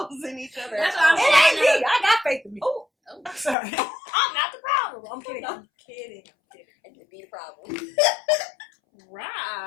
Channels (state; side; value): drops out; right; at 3.6 s